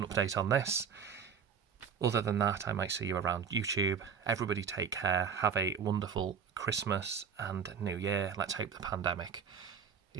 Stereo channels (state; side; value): quieter; left; 6.7 dB